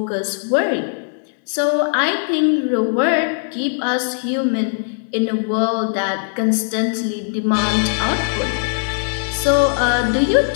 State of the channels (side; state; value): right; silent; digital silence